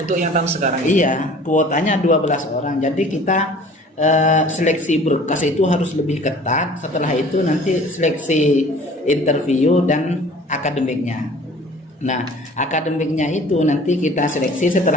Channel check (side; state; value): both; normal; correlation 0.48